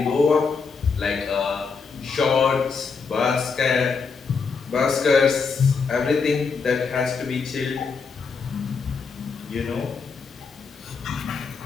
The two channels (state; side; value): quieter; right; 5.1 dB